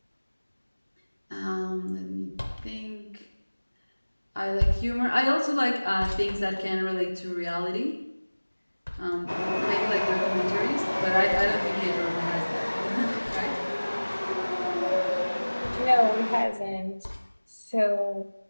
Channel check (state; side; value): inverted; both; correlation -1.00